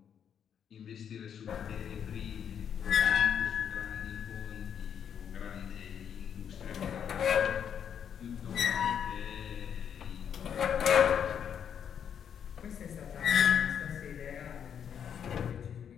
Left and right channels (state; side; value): quieter; right; 8.3 dB